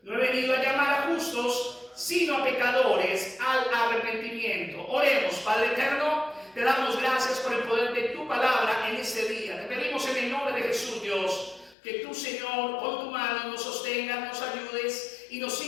No he venido a llamar a justos, sino a pecadores al arrepentimiento. Oremos. Padre eterno, te damos gracias por el poder de tu palabra en este día. Te pedimos en el nombre de Jesús, Dios, que tú, Señor, con tu mano nos sostengas, nos ayudes y nos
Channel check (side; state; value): right; drops out; at 11.8 s